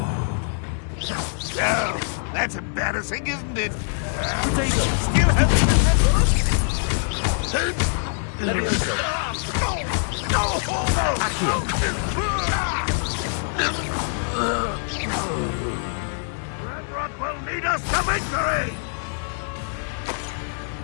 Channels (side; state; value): right; silent; 62 dB below the other